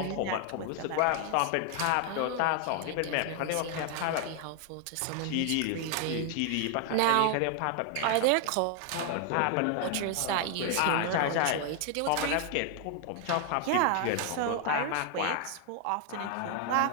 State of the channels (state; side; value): different; both; correlation 0.00